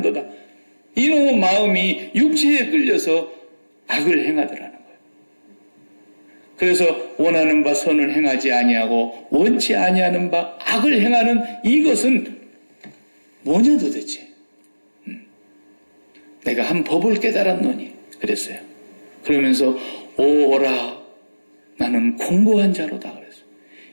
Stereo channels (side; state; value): both; inverted; correlation -1.00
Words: 이놈의 마음이 육체에 끌려서 악을 행하더라는 거예요. 그래서 원하는 바 선을 행하지 아니하고 원치 아니하는 바 악을 행하는 이것은 뭐냐 도대체. 내가 한 법을 깨달았노니 그랬어요. 그러면서 오라 나는 공고한 자로다 그랬어요.